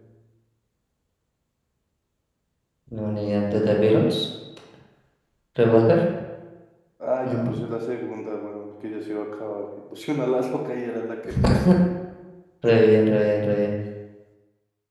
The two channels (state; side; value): identical; both; correlation 1.00